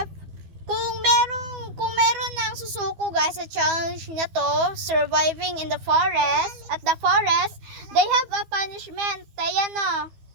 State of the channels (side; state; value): left; late; 12 ms